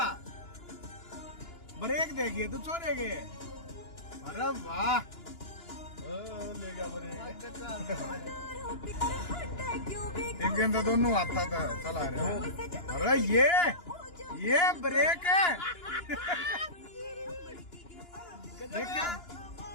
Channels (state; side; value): late; right; 2.9 ms